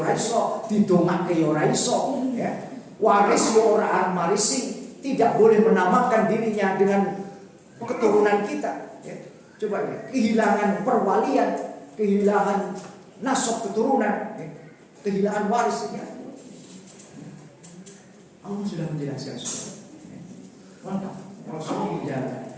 iso, didongake ya ora iso, ya. Waris ya ora marisi, tidak boleh menamakan dirinya dengan keturunan kita, ya. Coba ya, kehilangan perwalian, kehilangan nasab keturunan, ya. Kehilangan waris, ya. Allah sudah menjelaskan semua. Lengkap. Rasulullah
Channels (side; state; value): both; identical; correlation 1.00